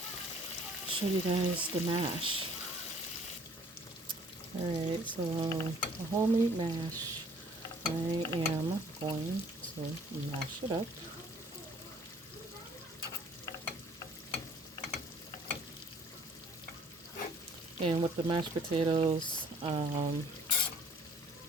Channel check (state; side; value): normal; both; correlation 0.56